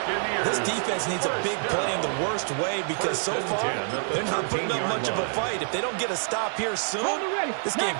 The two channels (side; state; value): left; silent; 60 dB below the other